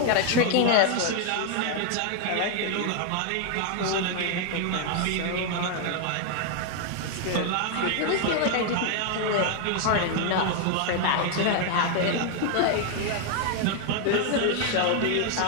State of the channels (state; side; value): different; both; correlation 0.00